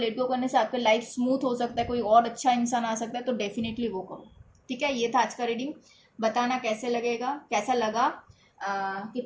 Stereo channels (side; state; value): both; identical; correlation 1.00